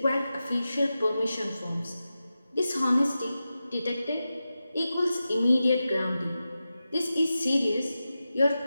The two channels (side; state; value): both; inverted; correlation -0.92